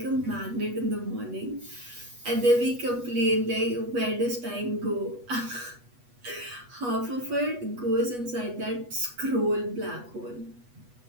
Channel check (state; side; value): late; left; 8.2 ms